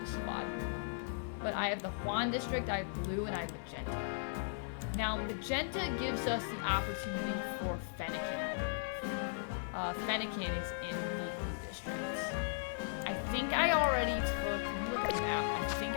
squad. But I have the Juan district, I have blue, and I have magenta. Now, magenta gives us the opportunity for Fennekin, I believe. Fennekin is in the blue district. I think I already took, let me look at the map. I think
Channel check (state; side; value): silent; right; digital silence